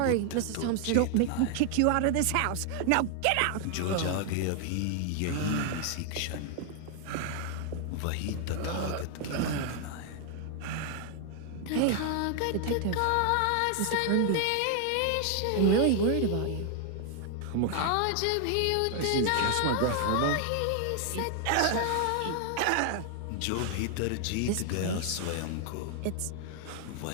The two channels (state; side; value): different; both; correlation 0.00